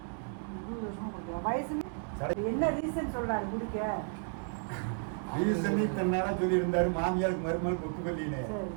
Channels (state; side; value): silent; left; 56 dB below the other